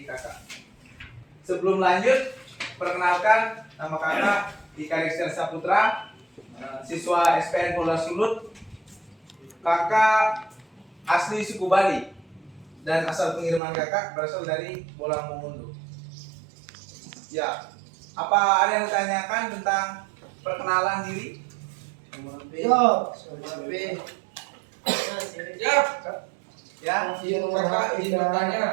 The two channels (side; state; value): left; drops out; at 13.6 s